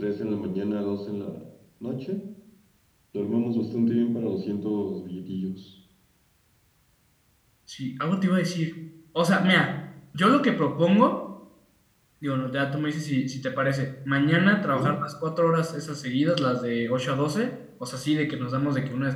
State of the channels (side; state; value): both; identical; correlation 1.00